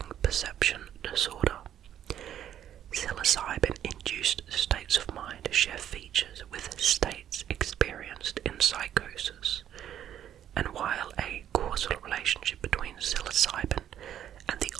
perception disorder. Psilocybin-induced states of mind share features with states experienced in psychosis, and while a causal relationship between psilocybin and the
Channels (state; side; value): quieter; left; 10.5 dB